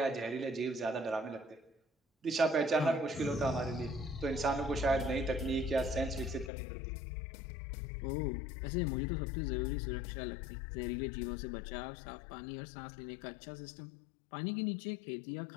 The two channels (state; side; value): drops out; right; at 6.5 s